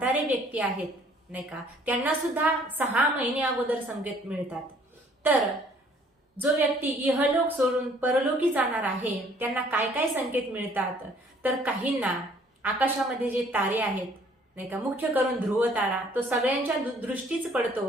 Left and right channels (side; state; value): both; normal; correlation 0.59